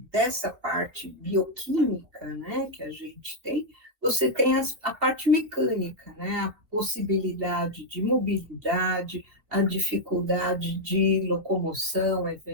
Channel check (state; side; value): late; left; 2.7 ms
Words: dessa parte bioquímica, né, que a gente tem, você tem a parte mecânica, né, a possibilidade de mobilidade, a dificuldade de locomoção